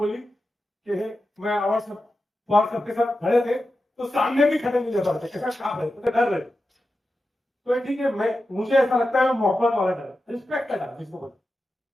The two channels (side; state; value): both; normal; correlation 0.91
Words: कि मैं अवार्ड सबके साथ खड़े थे तो सामने भी खड़े नहीं जा पाते, काम है तो डर रहे। तो ठीक है, मैं मुझे ऐसा लगता है मोहब्बत वाला डर, रिस्पेक्ट का डर जिसको बोलते।